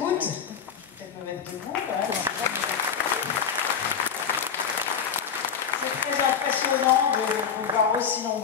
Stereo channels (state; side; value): quieter; right; 7.1 dB